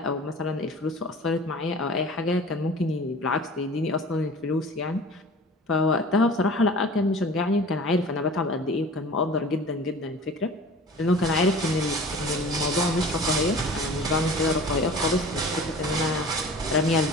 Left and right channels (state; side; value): normal; both; correlation 0.42